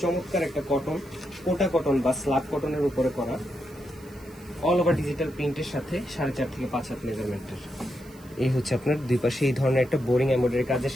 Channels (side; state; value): right; noise; hiss, 26 dB below the sound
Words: চমৎকার একটা কটন, কোটা কটন বা স্ল্যাব কটনের উপরে করা, অল ওভার ডিজিটাল প্রিন্টের সাথে 4.5 থেকে 5 হাত মেজারমেন্টের। এই হচ্ছে আপনার দুই পাশে এই ধরনের একটা বোরিং এমব্রয়ডারি কাজের